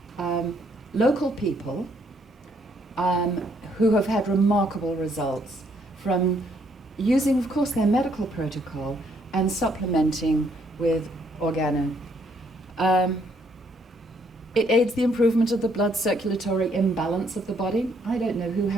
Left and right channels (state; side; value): normal; both; correlation 0.69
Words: local people who have had remarkable results from using, of course, their medical protocol and supplementing with organo. It aids the improvement of the blood circulatory imbalance of the body. I don't know who